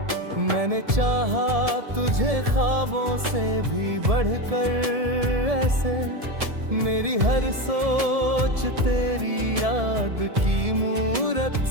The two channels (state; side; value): late; left; 1.7 ms